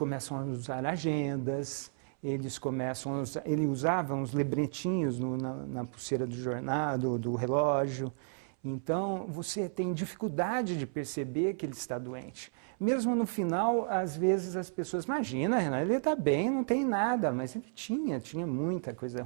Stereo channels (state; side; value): silent; left; 56 dB below the other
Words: a usar agendas, ele usava uns lebretinhos na pulseira do jornal, do relógio. Então, você tem dificuldade de perceber que ele está doente. Mesmo no final, às vezes as pessoas, imagina, Renato, ele está bem, não tem nada, mas ele tinha muita coisa